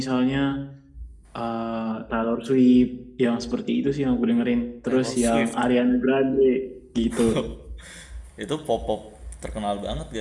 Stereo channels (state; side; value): identical; both; correlation 1.00